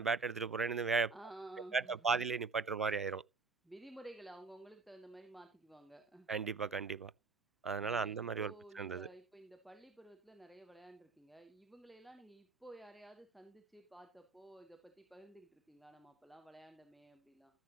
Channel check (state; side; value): quieter; left; 4.4 dB